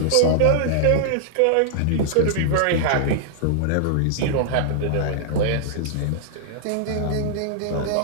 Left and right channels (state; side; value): different; both; correlation -0.02